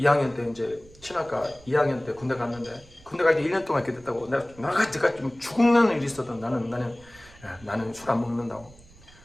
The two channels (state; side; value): noise; right; rumble, 24 dB below the sound